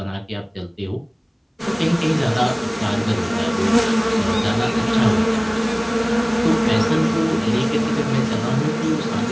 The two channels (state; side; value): identical; both; correlation 1.00